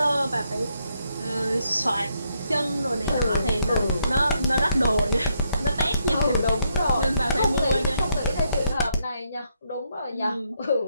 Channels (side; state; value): both; inverted; correlation -0.78